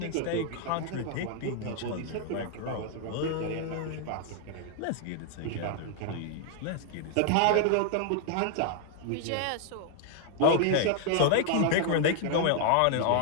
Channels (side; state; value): both; different; correlation 0.00